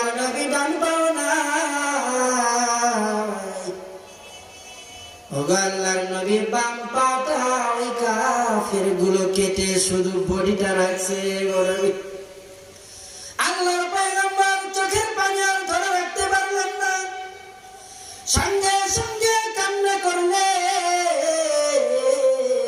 নবী, ডান পাও নাই। ওগো আল্লাহর নবী, বাম পাটা ওই কাফের গুলো কেটে শুধু বডিটা রাখছে। গো নবী, আল্লাহর পয়গম্বর চোখের পানি আর ধরে রাখতে পারলেন না, সঙ্গে সঙ্গে কান্না করলে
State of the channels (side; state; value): both; identical; correlation 1.00